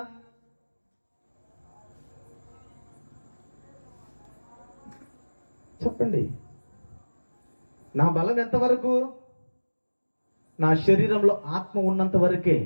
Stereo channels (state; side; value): inverted; both; correlation -1.00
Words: చెప్పండి. నా బలం ఎంతవరకు? నా శరీరంలో ఆత్మ ఉన్నంత వరకే.